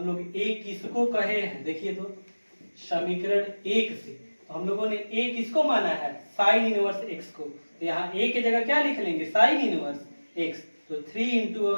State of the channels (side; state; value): both; inverted; correlation -1.00